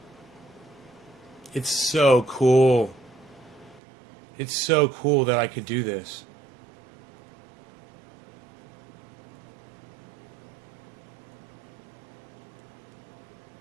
It's so cool. It's so cool that I could do this.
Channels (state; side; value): drops out; left; at 3.8 s